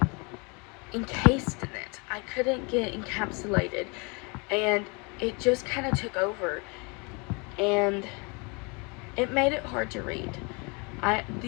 encased in it. I couldn't get encapsulated, and it just kind of took over, and it made it hard to read.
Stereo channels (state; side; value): quieter; right; 30.8 dB